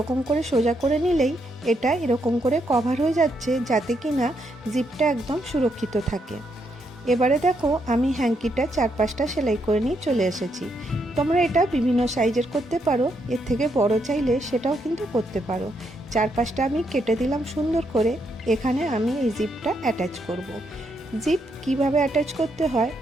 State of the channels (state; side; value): normal; both; correlation 0.78